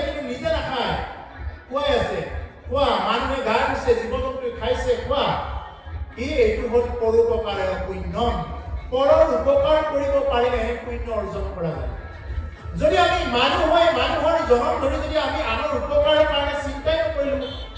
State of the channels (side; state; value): both; identical; correlation 1.00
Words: কিন্তু নিজে নাখায়, খুৱাই আছে। খোৱা। মানুহে গা ধুইছে, জীৱ জন্তুৱে খাইছে, খোৱা। এইটো হ'ল পৰোপকাৰে পুণ্যম। পৰৰ উপকাৰ কৰিব পাৰিলেহে পুণ্য অৰ্জন কৰা যায়। যদি আমি মানুহ হৈ মানুহৰ জনম ধৰি যদি আমি আনৰ উপকাৰৰ কাৰণে চিন্তাই নকৰিলো,